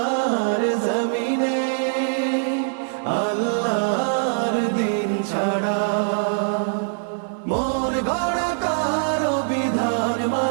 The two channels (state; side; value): silent; left; digital silence